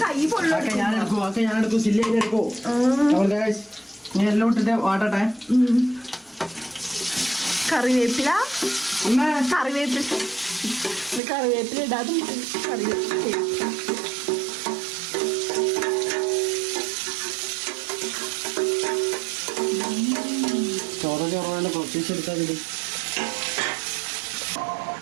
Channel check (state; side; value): drops out; left; at 11.2 s